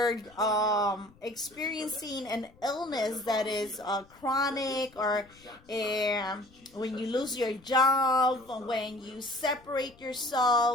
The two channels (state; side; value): noise; left; rumble, 27 dB below the sound